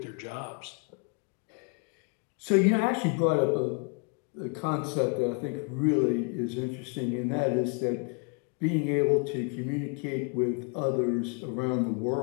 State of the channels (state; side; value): quieter; right; 35.9 dB